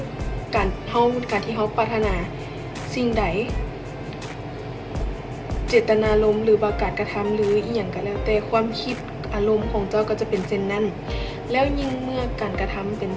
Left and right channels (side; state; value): both; identical; correlation 1.00